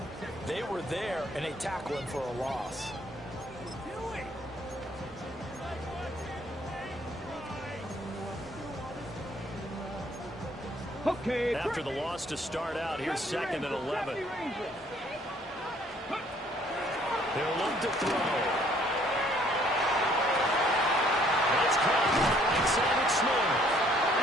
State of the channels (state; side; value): normal; both; correlation 0.62